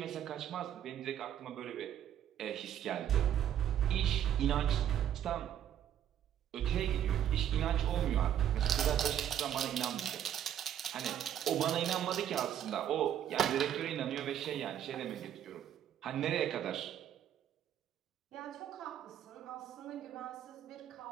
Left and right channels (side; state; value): left; quieter; 10.4 dB